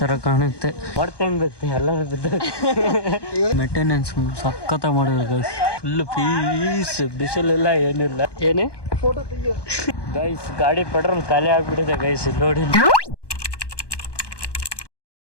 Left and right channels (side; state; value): right; late; 1.2 ms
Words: ಕಾಣುತ್ತೆ. ಹೊಡ್ತಂಗುತ್ತೆ ಎಲ್ಲರೂ ಬಿದ್ದು. ಮೇಂಟೆನೆನ್ಸ್ ಸಖತ್ತ ಮಾಡಿದ್ರು ಗೈಸ್. ಫುಲ್ ಪೀಸ್, ಬಿಸಿಲೆಲ್ಲ ಏನಿಲ್ಲ. ಏನೇ ಗೈಸ್ ಗಾಡಿ ಪೆಟ್ರೋಲ್ ಖಾಲಿ ಆಗ್ಬಿಟ್ಟಿದೆ ಗೈಸ್. ನೋಡಿ